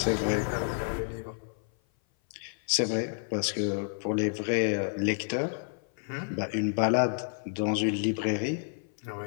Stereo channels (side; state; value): right; silent; 55 dB below the other